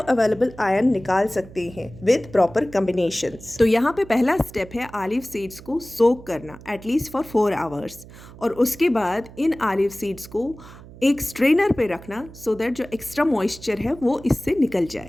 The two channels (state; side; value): noise; right; hum, 18 dB below the sound